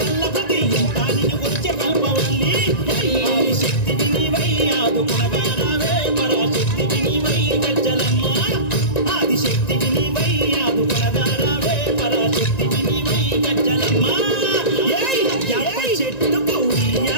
కళ్ళపతి ఇంకా నేను గురించి కలపవల్లి శక్తివి నీవై ఆదుకునగానవే పరాశక్తివి నీవై గజ్జలమ్మ ఆదిశక్తివి నీవై ఆదుకునగానవే పరాశక్తివి నీవై గజ్జలమ్మ యాప చెట్టుకు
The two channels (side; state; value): right; late; 1.9 ms